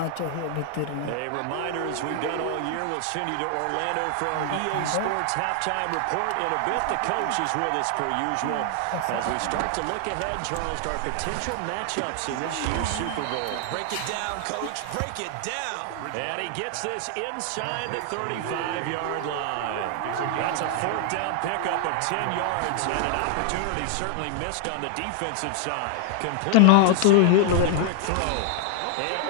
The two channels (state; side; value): different; both; correlation 0.00